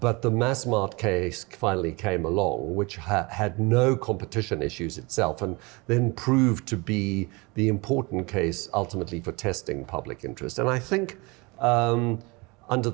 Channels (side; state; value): left; quieter; 26.5 dB